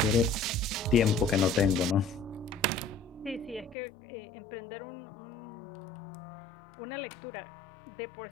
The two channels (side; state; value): right; drops out; at 3.8 s